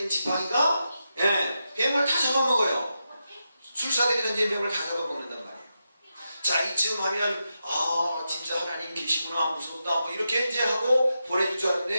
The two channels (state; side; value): inverted; both; correlation -0.87